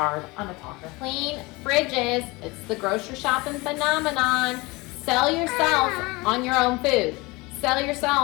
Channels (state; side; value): quieter; right; 23.9 dB